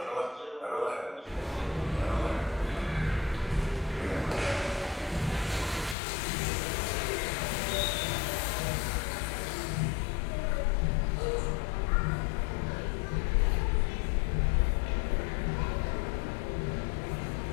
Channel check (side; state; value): right; drops out; at 6.0 s